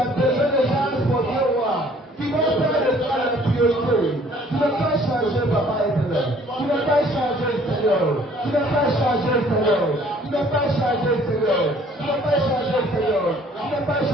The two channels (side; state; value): both; normal; correlation 0.57